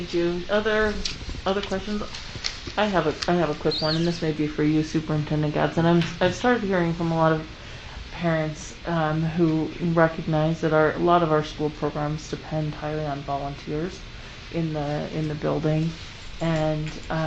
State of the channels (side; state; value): both; identical; correlation 1.00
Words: you. Other questions? I have a quick one, and this may be for you, Superintendent Gadsden. I've started hearing from a lot of parents who recognize that a lot of our school programs depend highly on volunteers in the building, and